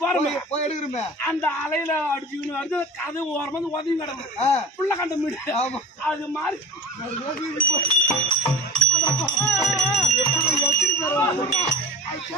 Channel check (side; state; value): both; normal; correlation 0.37